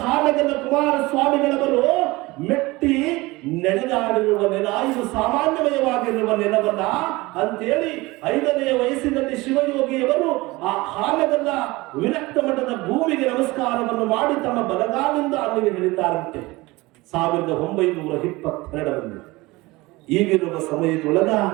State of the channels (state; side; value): quieter; left; 21.6 dB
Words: ಹಾನಗಲ್ಲ ಕುಮಾರಸ್ವಾಮಿಗಳವರು ಮೆಟ್ಟಿ ನಡೆದಾಡಿರುವ ನೆಲ, ಇದು ಸಾಮಾನ್ಯಮಯವಾಗಿರುವ ನೆಲವಲ್ಲ ಅಂತೇಳಿ 5ನೇ ವಯಸ್ಸಿನಲ್ಲಿ ಶಿವಯೋಗಿಯವರು ಆ ಹಾನಗಲ್ಲ ವಿರಕ್ತ ಮಠದ ಭೂಮಿಗೆ ನಮಸ್ಕಾರವನ್ನು ಮಾಡಿ ತಮ್ಮ ಬಲಗಾಲಿಂದ ಅಲ್ಲಿಗೆ ಇಳಿತಾರಂತೆ 1922ರಲ್ಲಿ. ಈಗಿರುವ ಸಮಯದೊಳಗ